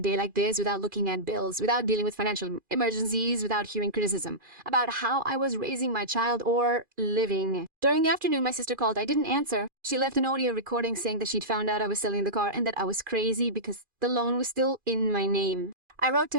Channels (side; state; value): left; late; 2.4 ms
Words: like this without looking at bills, without dealing with financial emergencies, without hearing criticism about how I was raising my child or living. During the afternoon, my sister called. I didn't answer. She left an audio recording saying that she'd found out I was selling the car and that I was crazy because the loan was still in my name. I wrote